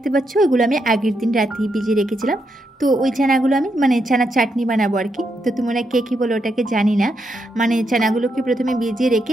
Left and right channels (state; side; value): normal; both; correlation 0.81